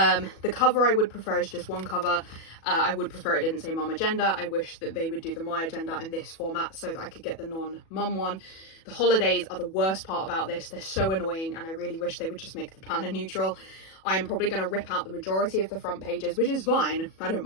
cover I would prefer is just one cover. I would prefer it didn't say MomAgenda. I wish that they would do the My Agenda in this format so that I could get the non-mum one. The holidays are the worst part about this. They're so annoying, and I really wish they would just make the planner neutral. I'm probably going to rip out the majority of the front pages, which is fine. I don't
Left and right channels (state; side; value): late; right; 37 ms